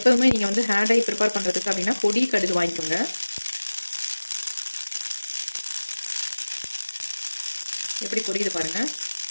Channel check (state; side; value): inverted; both; correlation -1.00